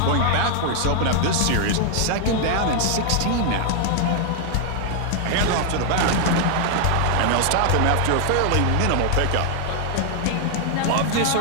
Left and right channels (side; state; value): both; different; correlation 0.00